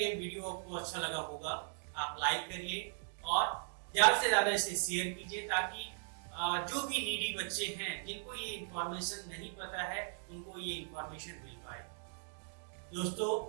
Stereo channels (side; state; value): left; silent; digital silence